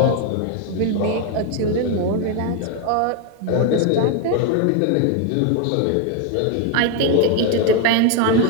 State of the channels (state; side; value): different; both; correlation 0.01